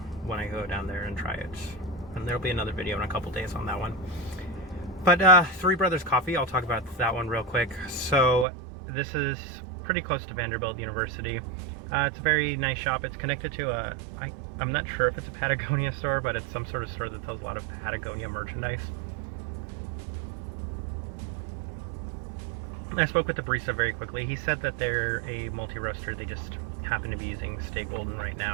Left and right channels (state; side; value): drops out; left; at 8.5 s